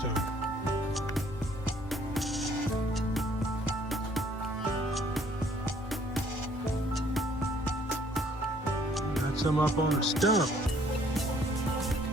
Got some up on the stump.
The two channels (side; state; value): both; normal; correlation 0.61